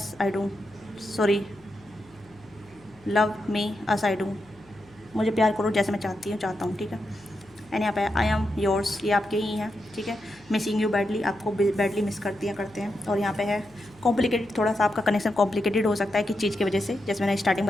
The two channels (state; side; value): noise; left; hum, 28 dB below the sound